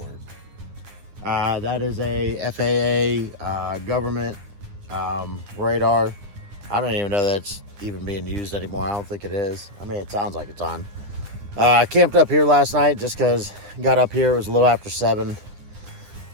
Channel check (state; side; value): late; left; 9.9 ms